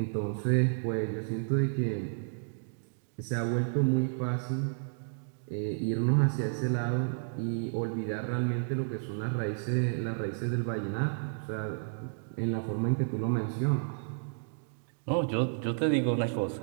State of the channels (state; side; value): silent; left; digital silence